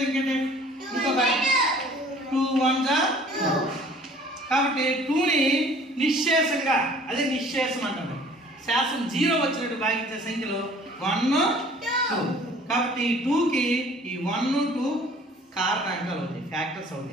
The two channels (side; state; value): both; normal; correlation 0.52